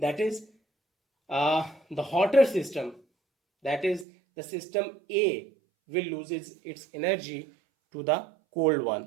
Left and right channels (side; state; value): left; drops out; at 4.0 s